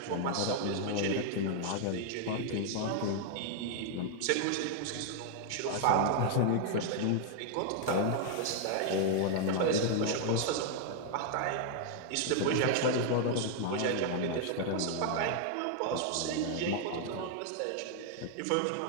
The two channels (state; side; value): different; both; correlation 0.00